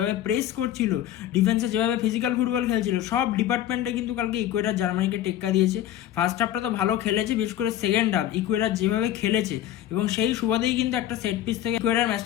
প্রেস করছিল, ডিফেন্সে যেভাবে ফিজিক্যাল ফুটবল খেলছিল, সব ডিপার্টমেন্টে কিন্তু কালকে ইকুয়েডর জার্মানিকে টেক্কা দিয়েছে। ফার্স্ট হাফটা তো ভালো খেলেছে, বিশেষ করে সেকেন্ড হাফ ইকুয়েডর যেভাবে খেলেছে এবং সেই সুবাদেই কিন্তু একটা সেট পিস থেকে ইকুয়েডর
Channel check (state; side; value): quieter; right; 12.0 dB